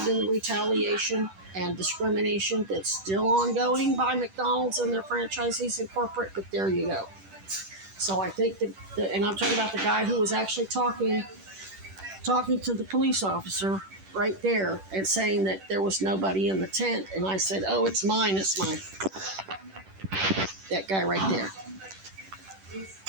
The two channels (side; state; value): left; late; 10 ms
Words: in the retaliation and discrimination that's still ongoing by McDonald's and their franchisees and corporate, but there you go. So I think and I'm talking about the guy who was actually talking to the police officer right there and saying that there was nobody in the tent, and I said, "Oh, it's mine, that guy right there.